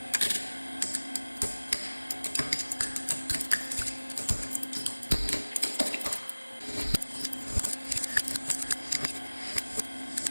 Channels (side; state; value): both; inverted; correlation -1.00